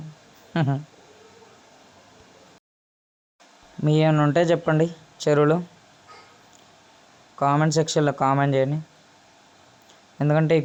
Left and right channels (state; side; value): identical; both; correlation 1.00